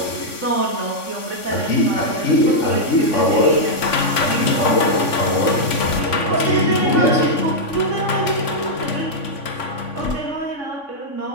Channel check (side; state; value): right; late; 3.5 ms